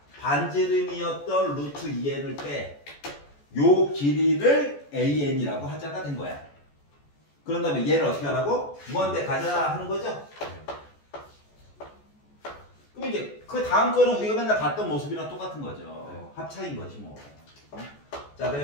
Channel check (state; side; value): late; right; 14 ms